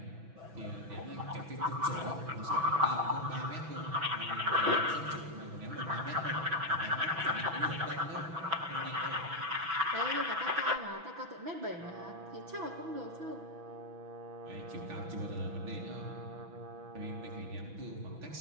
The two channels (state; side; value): late; left; 6.1 ms